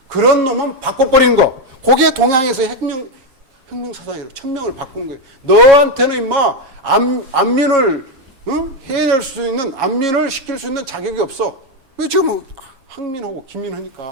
그런 놈은 바꿔버리는 거. 그게 동양에서의 혁명 사상이라고. 천명을 바꾸는 거예요. 너한테는 임마 안민을 해낼 수 있는, 안민을 시킬 수 있는 자격이 없어. 왜 지금 학민하고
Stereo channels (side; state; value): left; late; 7.3 ms